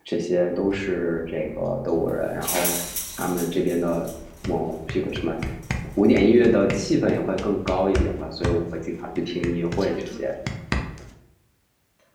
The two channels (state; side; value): identical; both; correlation 1.00